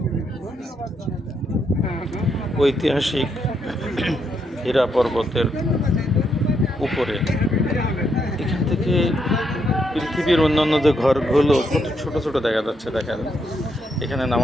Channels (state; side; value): normal; both; correlation 0.77